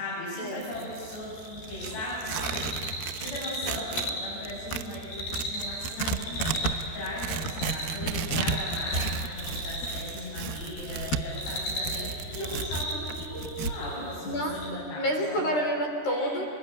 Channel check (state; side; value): late; right; 13 ms